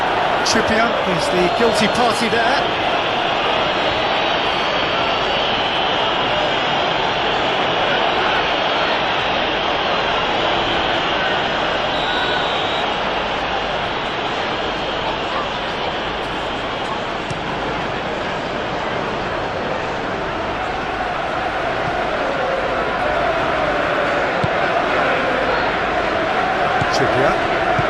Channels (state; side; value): identical; both; correlation 1.00